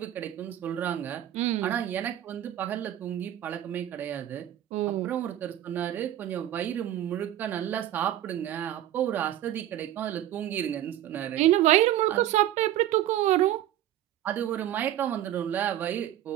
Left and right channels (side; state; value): left; quieter; 12.4 dB